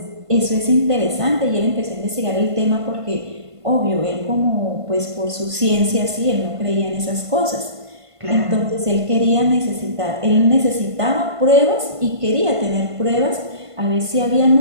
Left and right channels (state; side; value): late; left; 1.5 ms